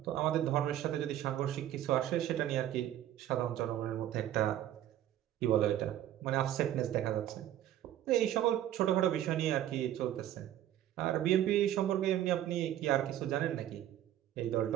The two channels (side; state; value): left; quieter; 12.2 dB